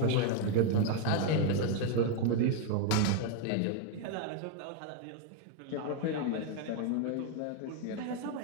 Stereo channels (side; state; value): both; different; correlation 0.00